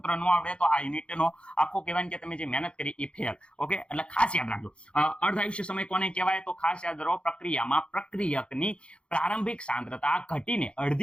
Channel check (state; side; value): late; right; 0.057 ms